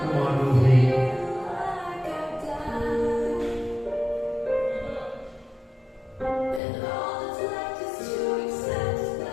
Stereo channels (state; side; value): drops out; right; at 6.6 s